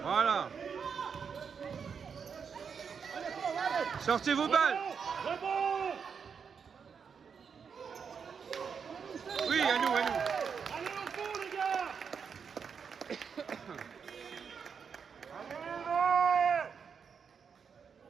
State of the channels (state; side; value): quieter; left; 6.4 dB